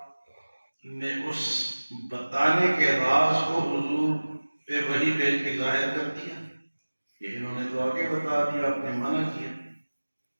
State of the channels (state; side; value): inverted; both; correlation -1.00